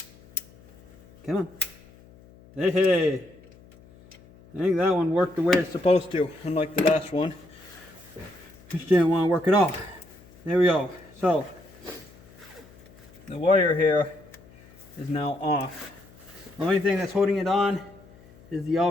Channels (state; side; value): noise; left; hum, 24 dB below the sound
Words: Come on. Hey, hey. I think that one worked the way it's supposed to, unlike the last one. Just didn't want to work at all. There we go. So, the wire here is now off. The only thing that's holding it on is the